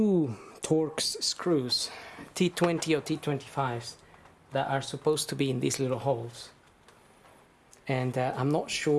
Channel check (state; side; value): identical; both; correlation 1.00